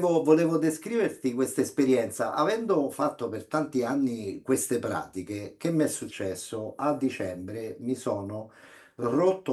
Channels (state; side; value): identical; both; correlation 1.00